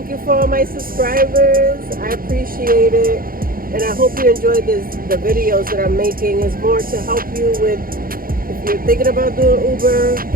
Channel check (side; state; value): left; late; 0.42 ms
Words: you for all my subscribers. I appreciate it. And I hope you enjoyed the videos that I'm making. It's more to help you with, if you're thinking about doing Uber,